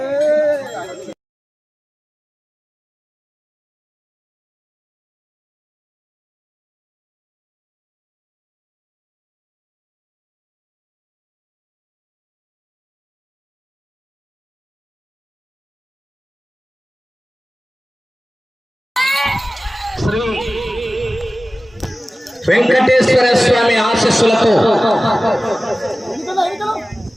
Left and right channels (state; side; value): normal; both; correlation 0.96